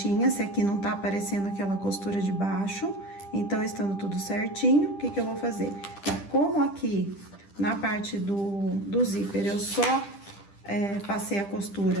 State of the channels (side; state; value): right; late; 10 ms